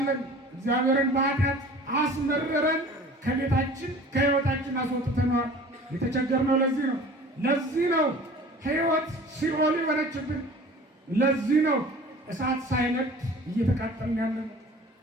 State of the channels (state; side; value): normal; both; correlation 0.45